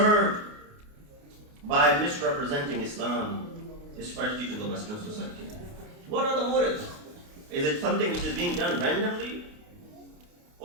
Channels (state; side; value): late; left; 28 ms